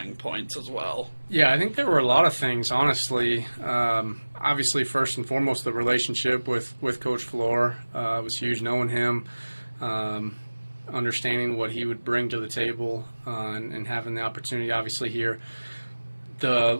points as well? Yeah, I think there were a lot of things, honestly. Obviously, first and foremost, the relationship with Coach Flohr was huge. Knowing him, understanding what he would bring to the table, and having the opportunity, obviously, here. The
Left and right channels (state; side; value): inverted; both; correlation -1.00